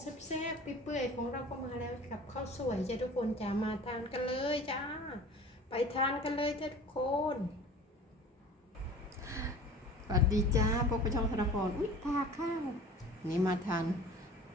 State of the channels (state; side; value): normal; both; correlation 0.42